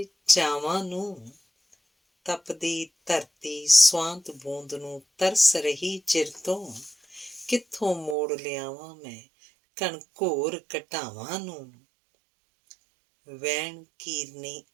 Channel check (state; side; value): drops out; left; at 8.2 s